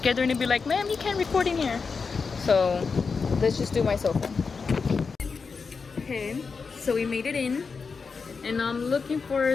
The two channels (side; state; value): right; quieter; 5.0 dB